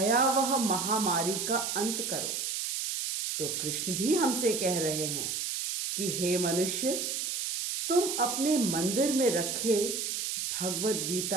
महामारी का अंत करो। तो कृष्ण भी हमसे कह रहे हैं कि हे मनुष्य, तुम अपने मंदिर में रखे Bhagavad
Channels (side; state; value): right; noise; hiss, 2 dB below the sound